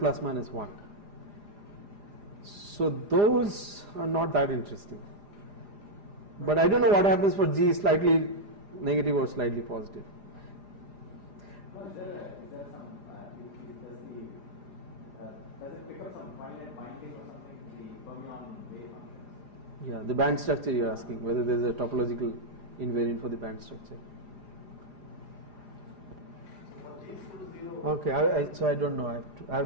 So those are not that interesting. But I don't know what happens for G slightly negative or slightly positive. Is there some, does it pick up some finite binding or something in the fermion wave functions? Yeah, the band structure you're asking, whether there's a topological invariant for the band structure. Okay, so I don't know. I have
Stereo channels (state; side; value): late; left; 4.9 ms